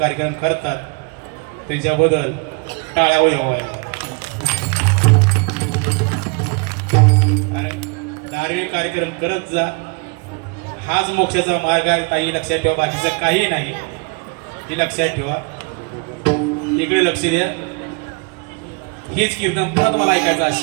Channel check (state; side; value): quieter; left; 31.6 dB